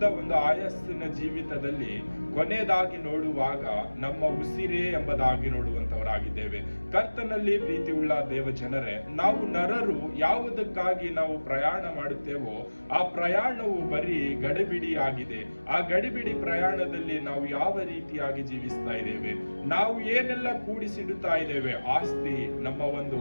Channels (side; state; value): both; inverted; correlation -1.00